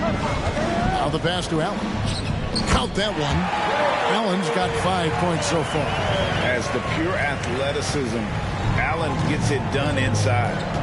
Now the pass to Allen. Count that one. Allen's got 5 points so far. As the pure athleticism, Allen gets it done inside.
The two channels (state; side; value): identical; both; correlation 1.00